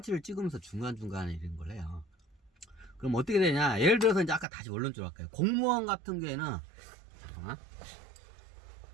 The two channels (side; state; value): left; drops out; at 4.5 s